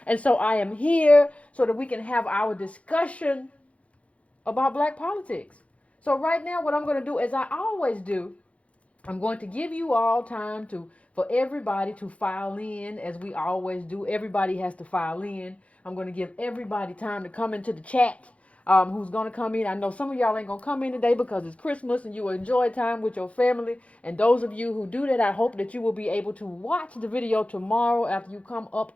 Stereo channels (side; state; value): right; late; 0.064 ms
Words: And so I am here so that we can have our discussion about black politics. So right now, what I'm going to do, as I always do, I'm going to give you all time for everybody to file in, as we always do. Everybody has to file in. I'm going to give everybody time to come into the chat. Who's going to come in? I know some of y'all ain't going to come in today because it's Christmas and you will enjoy time with your family. And those of you who do that, I hope that you will be able to watch the video tomorrow after you come up